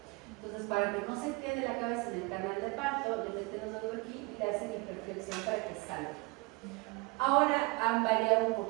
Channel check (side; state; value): left; quieter; 25.9 dB